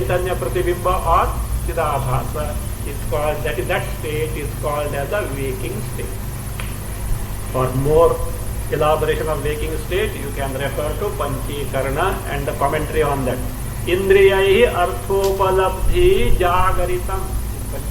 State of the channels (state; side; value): identical; both; correlation 1.00